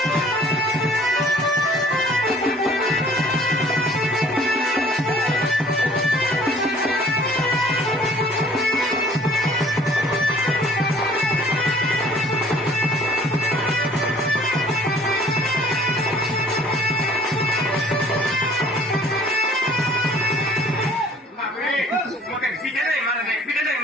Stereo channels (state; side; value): normal; both; correlation 0.55